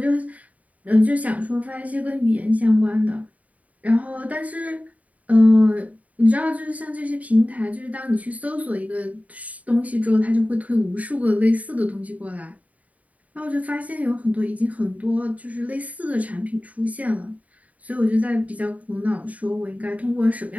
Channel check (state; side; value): late; left; 0.070 ms